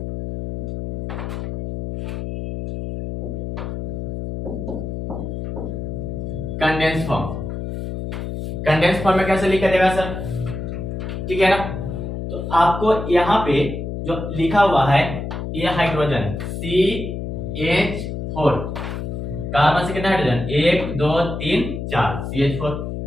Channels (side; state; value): left; noise; hum, 5 dB below the sound